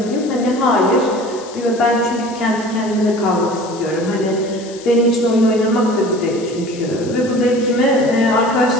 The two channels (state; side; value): noise; left; hiss, 18 dB below the sound